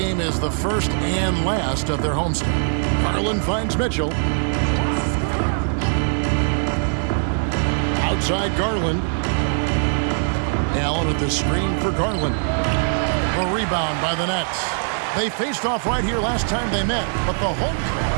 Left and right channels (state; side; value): silent; left; 65 dB below the other